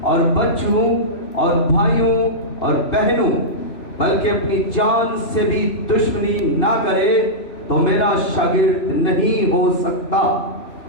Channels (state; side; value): late; right; 2.8 ms